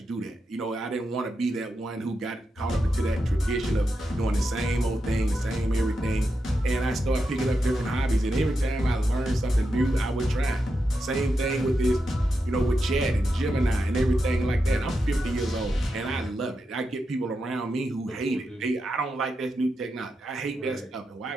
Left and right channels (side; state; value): both; normal; correlation 0.87